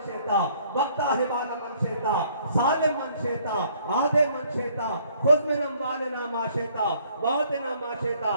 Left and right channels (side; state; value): both; inverted; correlation -0.62